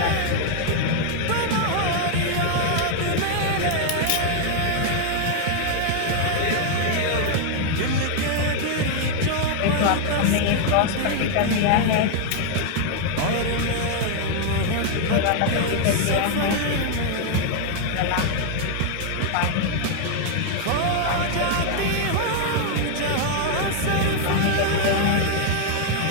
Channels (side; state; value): both; different; correlation 0.00